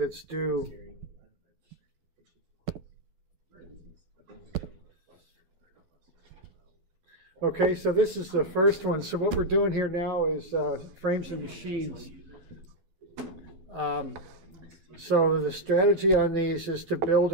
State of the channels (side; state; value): left; late; 12 ms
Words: due. Okay, so this is the first one. So what we're doing here now is frames and machines. So the strategy on these is to build